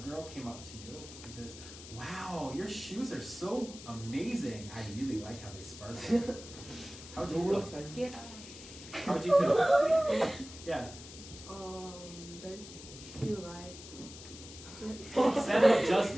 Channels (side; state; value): left; noise; hiss, 15 dB below the sound